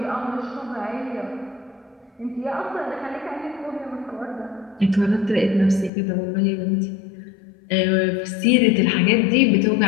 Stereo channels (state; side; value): drops out; right; at 5.9 s